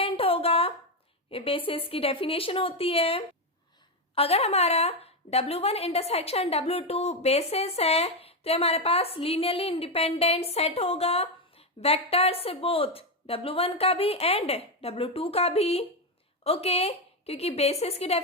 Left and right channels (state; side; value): normal; both; correlation 0.08